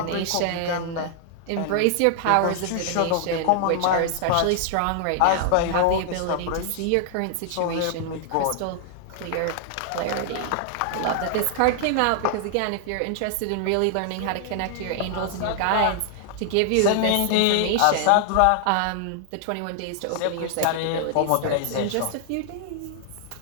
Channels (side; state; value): both; different; correlation 0.00